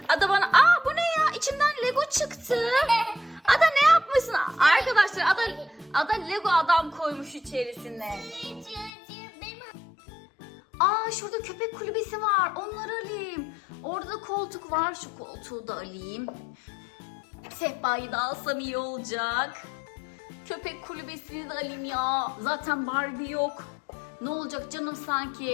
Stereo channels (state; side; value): drops out; right; at 8.9 s